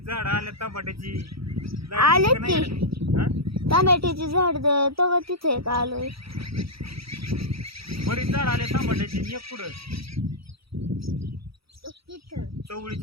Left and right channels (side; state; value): left; late; 0.76 ms